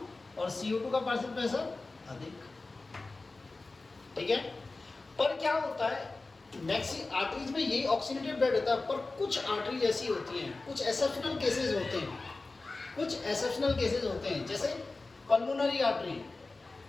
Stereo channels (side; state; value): right; quieter; 3.4 dB